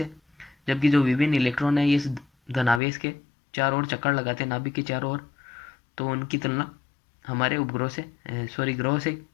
जबकि जो विभिन्न इलेक्ट्रॉन है ये इस धनावेश के चारों ओर चक्कर लगाते हैं नाभिक के चारों ओर, तो उनकी तुलना हमारे उपग्रह से ग्रहों से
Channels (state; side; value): drops out; right; at 2.8 s